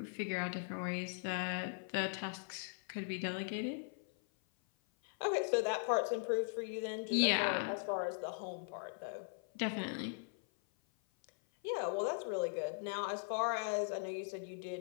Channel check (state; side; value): silent; right; 51 dB below the other